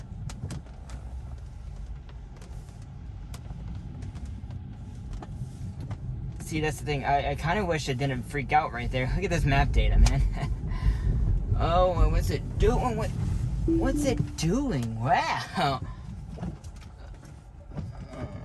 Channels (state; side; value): identical; both; correlation 1.00